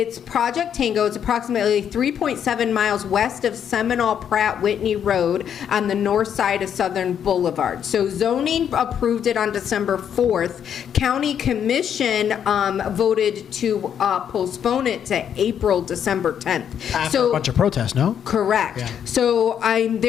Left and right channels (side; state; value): right; quieter; 8.7 dB